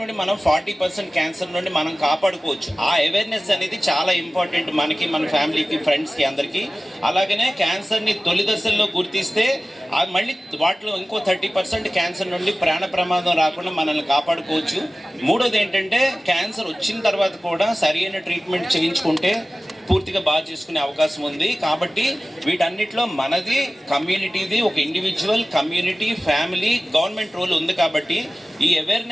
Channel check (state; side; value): normal; both; correlation 0.97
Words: మనం 40% క్యాన్సర్ నుండి మనం కాపాడుకోవచ్చు. ఆ అవేర్నెస్ అనేది చాలా ఇంపార్టెంట్ మనకి, మన ఫ్యామిలీకి, ఫ్రెండ్స్కి, అందరికీ. అలాగనే క్యాన్సర్ని తొలి దశల్లో గుర్తిస్తే మళ్ళీ వాటిలో ఇంకో 30% క్యాన్సర్ నుండి ప్రాణ ప్రమాదం రాకుండా మనల్ని కాపాడుకోవచ్చు. మూడోది ఏంటంటే క్యాన్సర్ వచ్చిన తర్వాత కూడా సరైన ట్రీట్మెంట్ చేయించుకుంటే పూర్తిగా బాగా చేసుకునే అవకాశం ఉంది. కాబట్టి వీటన్నిటిలో మనది, కమ్యూనిటీది, ఒక individual, community, family, government role ఉంది. కాబట్టి ఈ